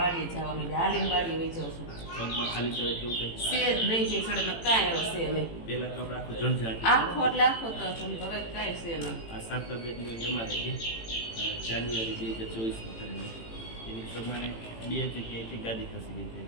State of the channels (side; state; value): right; late; 18 ms